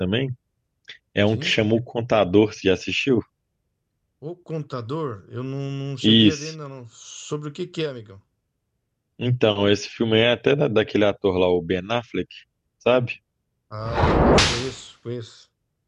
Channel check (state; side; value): identical; both; correlation 1.00